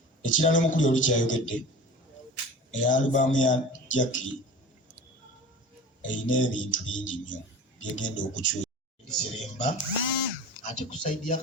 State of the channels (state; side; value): normal; both; correlation 0.36